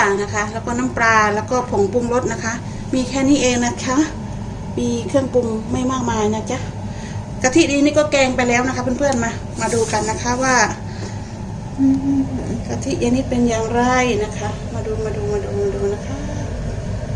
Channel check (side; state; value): both; identical; correlation 1.00